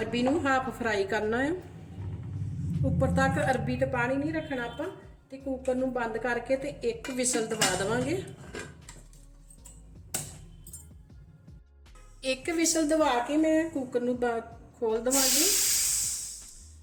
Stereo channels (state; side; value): identical; both; correlation 1.00